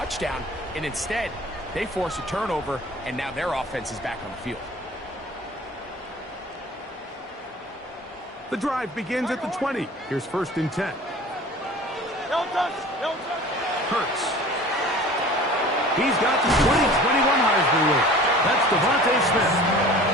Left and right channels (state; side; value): normal; both; correlation 0.43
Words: and instead, they force a turnover, and now their offense is back on the field. The drive begins at the 20. Here's 1st and 10. Hurts. He's got the 20-21 Heisman win. That's Devontae Smith.